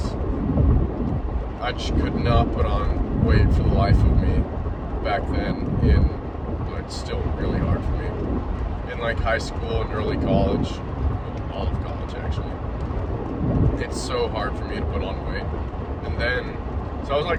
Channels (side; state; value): both; identical; correlation 1.00